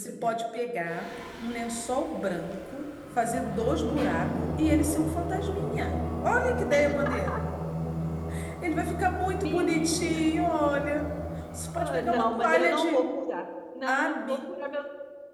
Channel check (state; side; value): identical; both; correlation 1.00